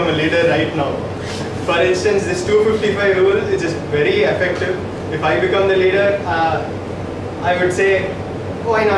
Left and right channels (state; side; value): identical; both; correlation 1.00